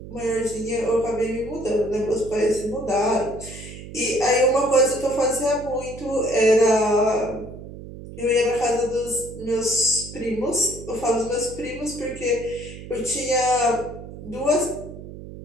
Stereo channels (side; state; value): right; noise; hum, 13 dB below the sound